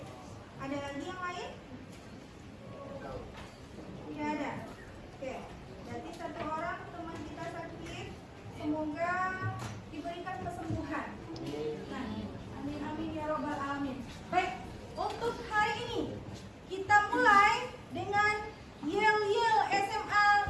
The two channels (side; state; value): both; identical; correlation 1.00